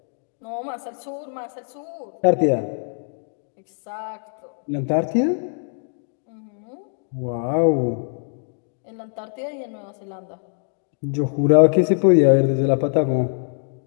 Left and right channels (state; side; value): silent; right; digital silence